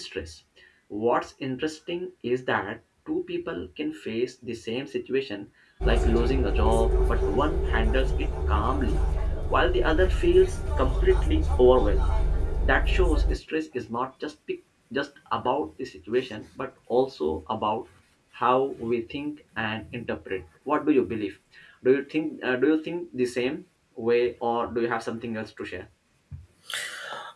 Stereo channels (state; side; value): identical; both; correlation 1.00